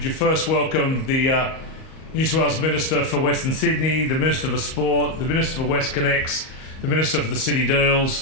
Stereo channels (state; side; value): late; right; 38 ms